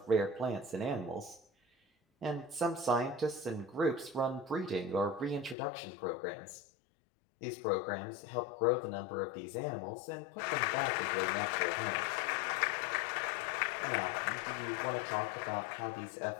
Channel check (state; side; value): drops out; right; at 5.6 s